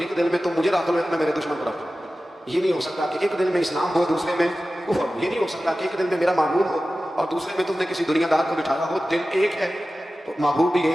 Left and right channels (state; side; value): normal; both; correlation 0.95